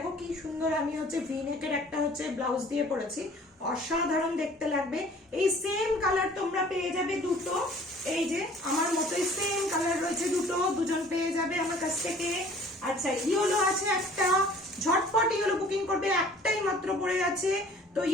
কি সুন্দর, আমি হচ্ছে ভি নেকের একটা হচ্ছে ব্লাউজ দিয়ে পরেছি, অসাধারণ দেখতে লাগবে। এই সেম কালার তোমরা পেয়ে যাবে দুটো, এই যে আমার মতোই সেম কালার রয়েছে দুটো, দুজন পেয়ে যাবে আমার কাছ থেকে। আচ্ছা, ইয়েলো আছে একটা, ঝটপট ইয়েলো বুকিং করবে, একটাই মাত্র পড়ে আছে, তো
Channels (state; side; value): normal; both; correlation 0.51